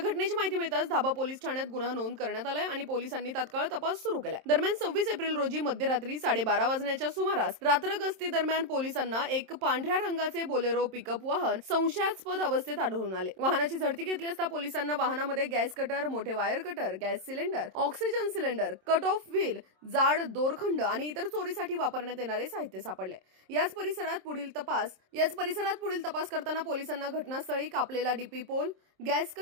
माहिती मिळताच धाबा पोलीस ठाण्यात गुन्हा नोंद करण्यात आलाय आणि पोलिसांनी तात्काळ तपास सुरू केलाय। दरम्यान 26 एप्रिल रोजी मध्यरात्री 12:30 वाजण्याच्या सुमारास रात्र गस्ती दरम्यान पोलिसांना एक पांढऱ्या रंगाचे बोलेरो पिकअप वाहन संशयास्पद अवस्थेत आढळून आले। वाहनाची झडती घेतली असता पोलिसांना वाहनामध्ये गॅस कटर, मोठे wire cutter, gas cylinder, oxygen cylinder, cut off wheel, जाड दोरखंड आणि इतर चोरीसाठी वापरण्यात येणारे साहित्य सापडले। याच परिसरात पुढील तपास करताना पोलिसांना घटनास्थळी कापलेला DP pole, gas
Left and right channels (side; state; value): left; late; 27 ms